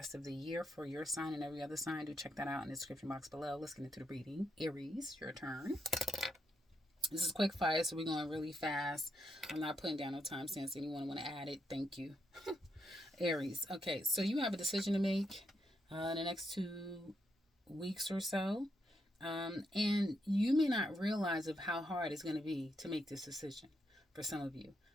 of the year for your sign and every other sign, do check that out in the description box below. Let's get into the reading. Aries, your turn. This is quick fire, so we're going really fast. I'm not putting down no timestamps. Anyone want to add it? Thank you. Aries. Okay, so you have a decision to make in the next 2 weeks or so. And you may not realize of how hard it's going to be to make this decision for some of you.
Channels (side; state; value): both; normal; correlation 0.80